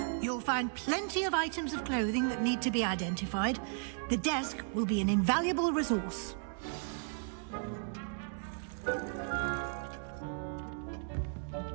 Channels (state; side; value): silent; left; 54 dB below the other